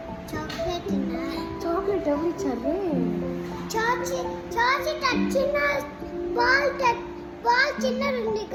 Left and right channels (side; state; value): both; identical; correlation 1.00